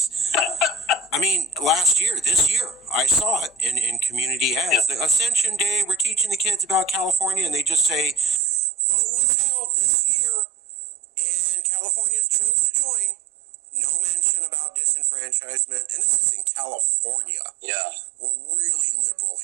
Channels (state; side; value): drops out; left; at 8.4 s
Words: I mean, this year, I saw it in community ads. The Ascension Day, we're teaching the kids about California, and they just say, vote was held this year, and Californians chose to join. No mention about disenfranchisement, and this is in California. Yeah. We're really liberal